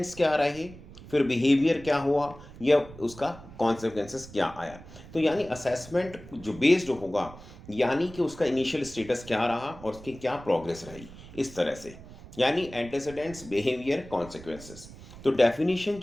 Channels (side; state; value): right; noise; rumble, 17 dB below the sound